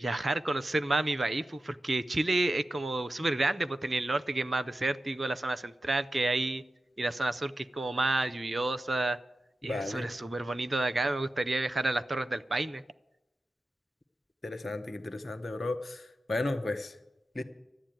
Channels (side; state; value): both; normal; correlation 0.93